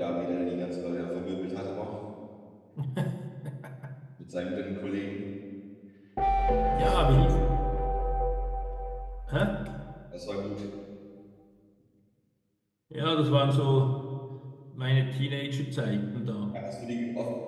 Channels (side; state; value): both; identical; correlation 1.00